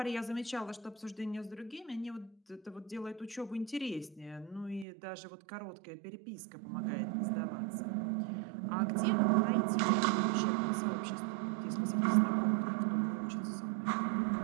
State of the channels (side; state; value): left; drops out; at 4.9 s